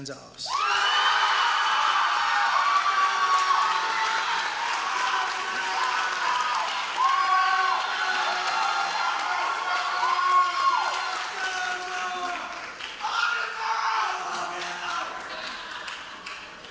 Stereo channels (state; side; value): identical; both; correlation 1.00